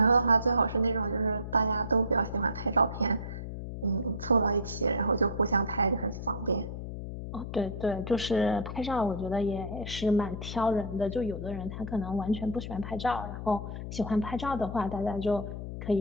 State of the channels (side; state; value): left; noise; hum, 7 dB below the sound